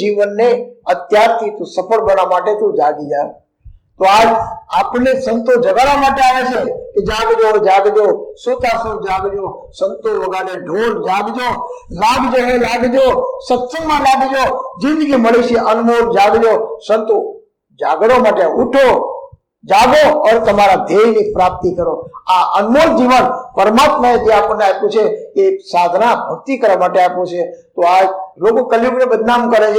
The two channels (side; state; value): both; identical; correlation 1.00